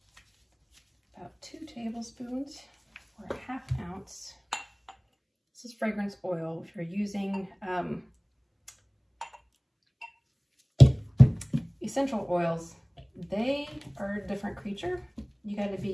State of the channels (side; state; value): both; identical; correlation 1.00